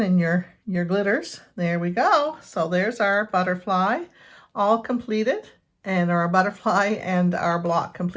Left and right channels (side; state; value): both; identical; correlation 1.00